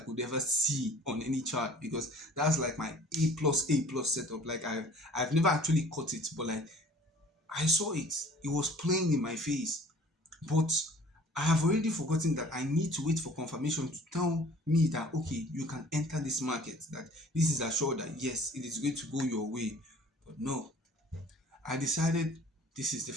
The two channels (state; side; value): normal; both; correlation 0.50